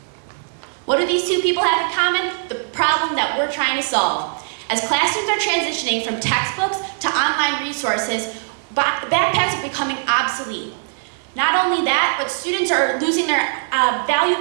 What do these two people have in common? The problem that we're trying to solve. As classrooms are transitioning from textbooks to online resources, backpacks are becoming obsolete. Not only that, but students are losing their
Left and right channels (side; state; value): left; silent; 59 dB below the other